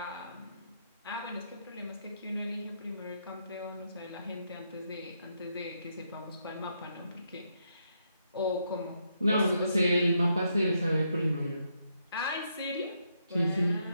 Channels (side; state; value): both; inverted; correlation -0.78